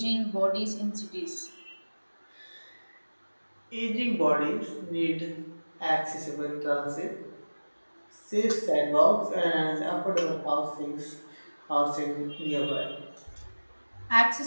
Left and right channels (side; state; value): both; inverted; correlation -1.00